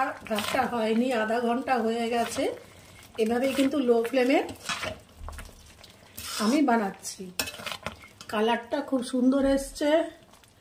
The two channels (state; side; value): identical; both; correlation 1.00